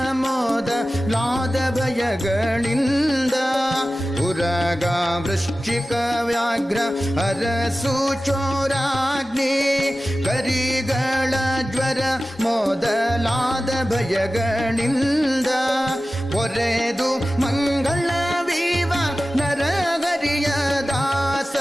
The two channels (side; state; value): both; normal; correlation 0.95